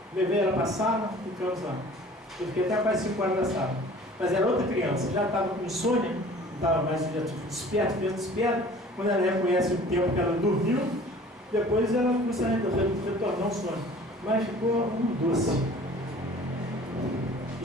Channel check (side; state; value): both; normal; correlation 0.47